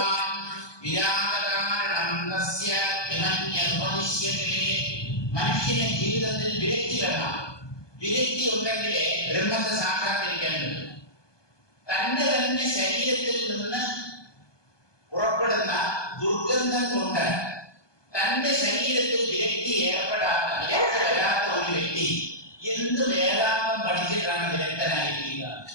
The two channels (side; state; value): right; late; 1.2 ms